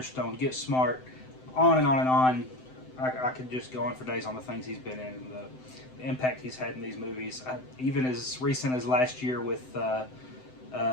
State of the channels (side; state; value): right; late; 7.8 ms